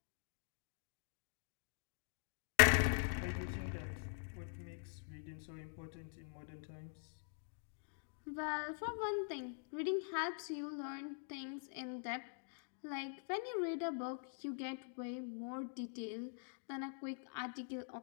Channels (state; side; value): silent; right; digital silence